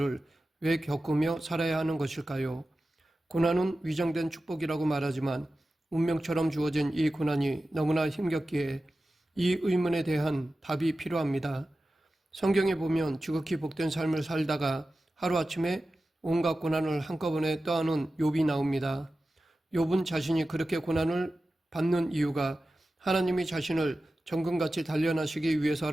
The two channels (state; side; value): normal; both; correlation 0.94